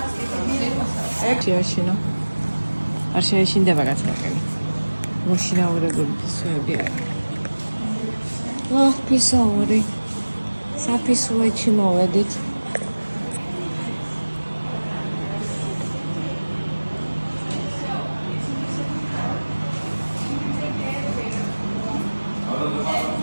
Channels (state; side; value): inverted; both; correlation -1.00